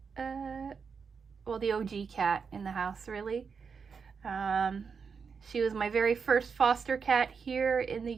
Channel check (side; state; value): left; quieter; 5.8 dB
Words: well, the OG cat in the house, really. She was my very first foster cat here in the